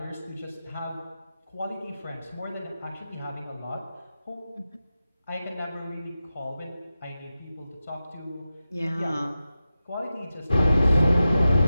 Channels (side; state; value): both; inverted; correlation -0.92